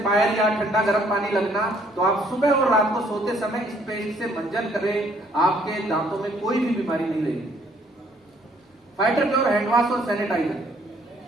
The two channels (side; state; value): both; normal; correlation 0.64